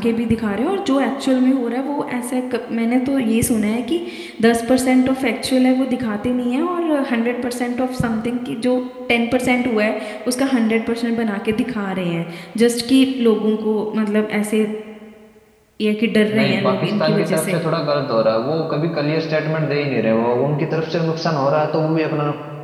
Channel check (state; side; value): identical; both; correlation 1.00